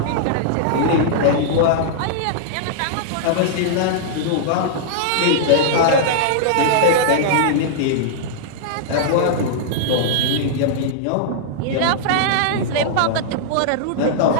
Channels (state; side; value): different; both; correlation -0.02